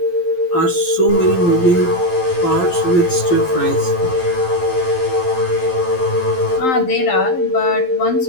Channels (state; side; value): late; right; 12 ms